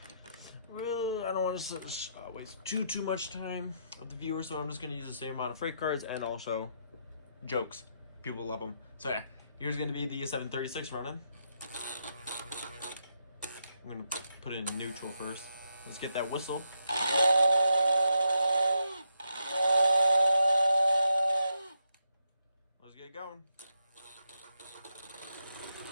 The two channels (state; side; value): inverted; both; correlation -0.81